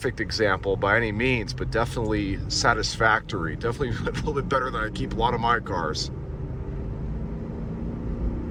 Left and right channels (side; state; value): both; identical; correlation 1.00